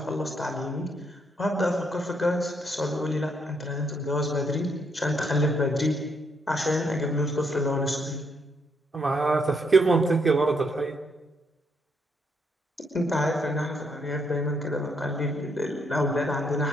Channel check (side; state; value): both; normal; correlation 0.74